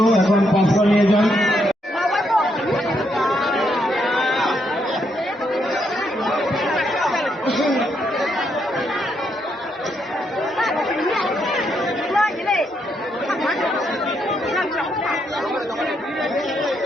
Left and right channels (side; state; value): both; normal; correlation 0.77